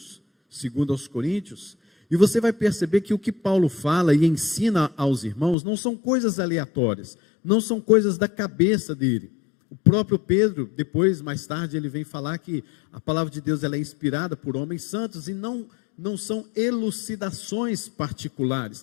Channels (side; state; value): right; drops out; at 5.6 s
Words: 2 Coríntios, e você vai perceber que o que Paulo fala e ensina aos irmãos não são coisas aleatórias, não são coisas da cabeça dele. O próprio Pedro, depois, mais tarde, ele vem falar que a palavra de Deus ela é inspirada por homens santos e não são elucidações particulares,